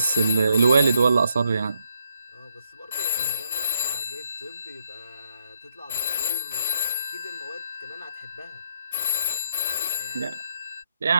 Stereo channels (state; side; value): inverted; both; correlation -0.76